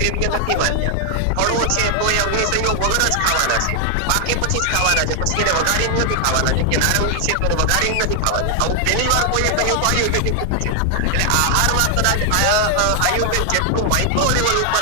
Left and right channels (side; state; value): both; different; correlation 0.00